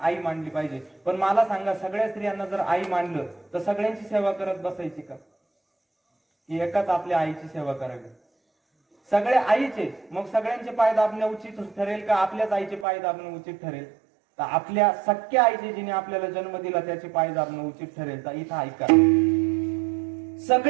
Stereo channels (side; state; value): left; drops out; at 12.9 s